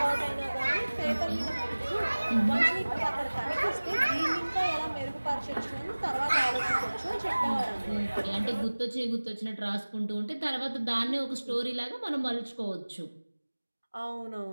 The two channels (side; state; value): both; inverted; correlation -1.00